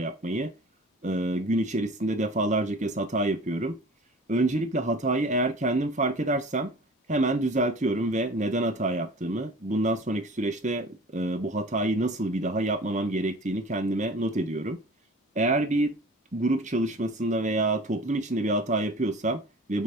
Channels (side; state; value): both; normal; correlation 0.42